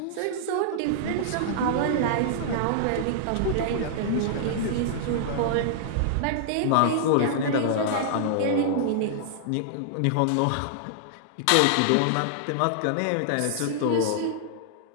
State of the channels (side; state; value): both; different; correlation -0.01